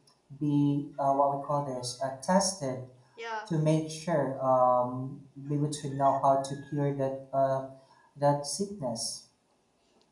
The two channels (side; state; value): both; identical; correlation 1.00